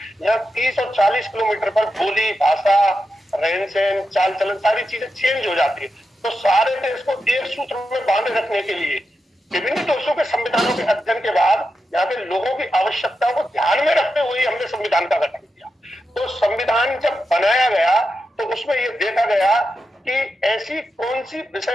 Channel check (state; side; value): normal; both; correlation 0.88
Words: यहाँ 30 और 40 किलोमीटर पर बोली, भाषा, रहन सहन, चाल चलन, सारी चीजें चेंज हो जाती है। तो सारे देश को एक सूत्र में बांधे रखने के लिए विभिन्न देशों के संविधानों के अध्ययन के बाद यहाँ के लोगों की आवश्यकताओं को ध्यान में रखते हुए हमने संविधान का गठन किया। तो संविधान जब बनाया गया तो उसमें यह देखा गया कि ऐसी कौन सी